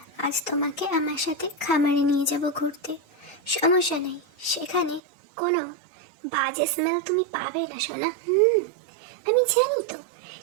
আজ তোমাকে আমার সাথে খামারে নিয়ে যাব ঘুরতে। সমস্যা নেই, সেখানে কোনো বাজে স্মেল তুমি পাবে না সোনা। আমি জানি তো,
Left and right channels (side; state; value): left; drops out; at 5.0 s